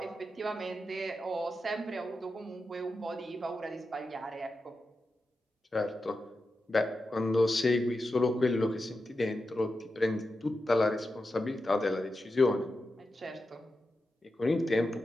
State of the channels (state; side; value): normal; both; correlation 0.90